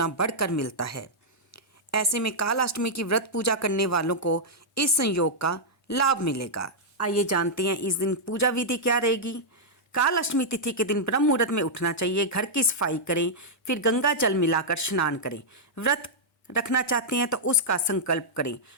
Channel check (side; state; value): both; normal; correlation -0.07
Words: बढ़कर मिलता है। ऐसे में काल अष्टमी की व्रत पूजा करने वालों को इस संयोग का लाभ मिलेगा। आइए जानते हैं इस दिन पूजा विधि क्या रहेगी। काल अष्टमी तिथि के दिन ब्रह्म मुहूर्त में उठना चाहिए। घर की सफाई करें, फिर गंगा जल मिलाकर स्नान करें। व्रत रखना चाहते हैं तो उसका संकल्प करें।